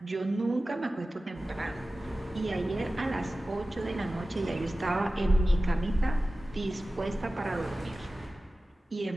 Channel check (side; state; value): both; normal; correlation 0.96